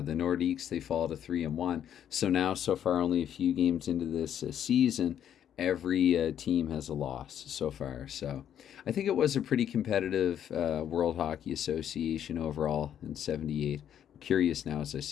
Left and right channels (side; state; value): right; quieter; 9.8 dB